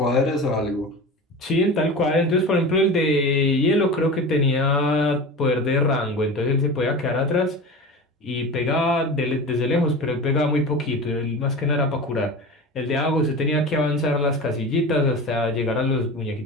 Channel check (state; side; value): normal; both; correlation 0.31